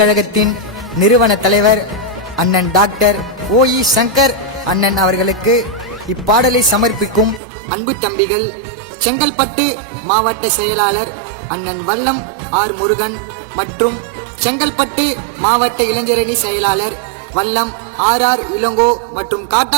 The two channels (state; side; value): drops out; left; at 7.4 s